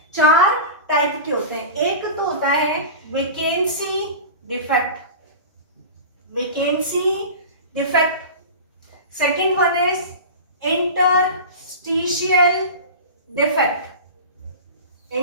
4 टाइप के होते हैं। एक तो होता है vacancy defect, second one is interstitial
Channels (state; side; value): inverted; both; correlation -0.31